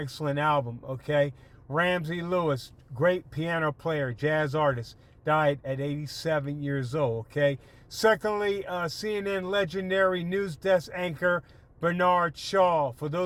album, okay? Ramsey Lewis, great piano player, jazz artist, died at 87 years old, okay? Secondly, CNN legendary news desk anchor Bernard Shaw. For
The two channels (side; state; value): both; identical; correlation 1.00